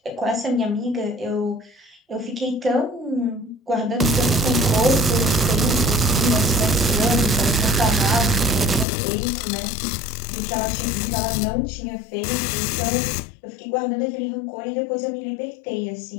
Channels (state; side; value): drops out; right; at 8.8 s